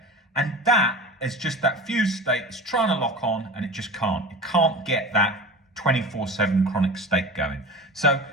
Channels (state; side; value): normal; both; correlation 0.34